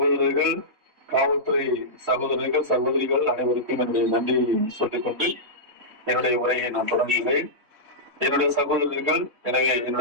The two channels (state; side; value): late; left; 3.6 ms